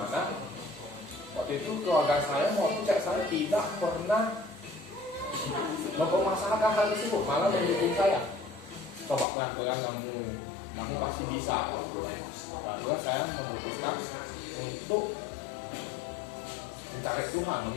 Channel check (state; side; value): drops out; right; at 9.2 s